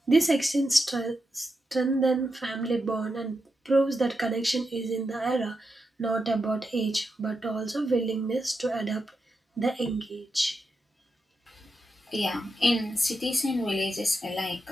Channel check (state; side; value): normal; both; correlation 0.86